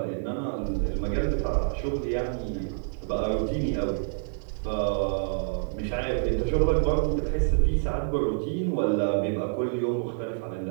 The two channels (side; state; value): left; silent; 60 dB below the other